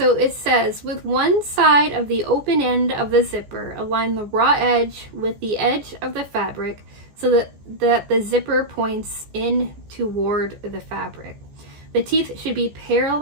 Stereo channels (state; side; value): late; left; 14 ms